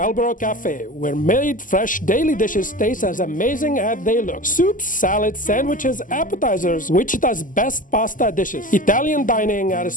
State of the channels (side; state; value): right; late; 0.38 ms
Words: Cafe, where made fresh daily dishes taste as amazing as they look. Soups, salads, sandwiches, appetizers, Wichita's best pasta dishes. Italian dining at